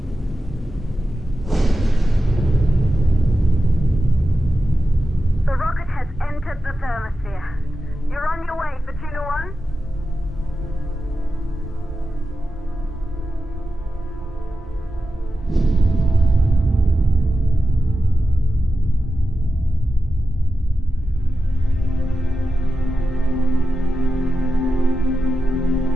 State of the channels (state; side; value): normal; both; correlation 0.92